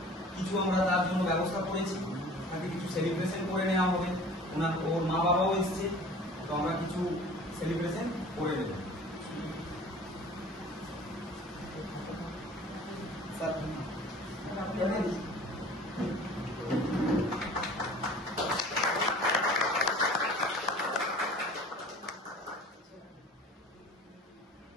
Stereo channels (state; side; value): normal; both; correlation 0.45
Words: কিছু আমরা তার জন্য ব্যবস্থা করেছি। তাকে কিছু সেলিব্রেশন করে নেওয়া হবে। ওর মা বাবাও এসছে, তো আমরা কিছু সেলিব্রেশন করে নেব।